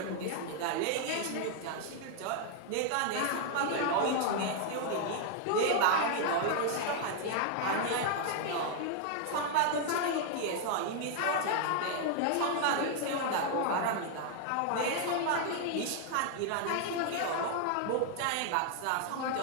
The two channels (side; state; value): both; different; correlation 0.00